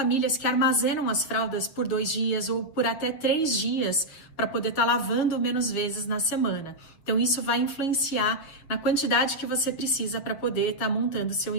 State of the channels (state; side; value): late; right; 6.9 ms